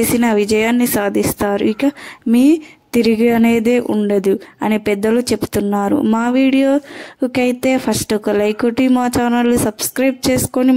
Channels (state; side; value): identical; both; correlation 1.00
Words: విజయాన్ని సాధిస్తారు. ఇక మీ తిరిగి అనేదే ఉండదు అని పెద్దలు చెప్తున్నారు. మా వీడియోకైతే ఫస్ట్ ఒక లైక్ కొట్టి మా ఛానల్ని సబ్స్క్రైబ్ చేసుకొని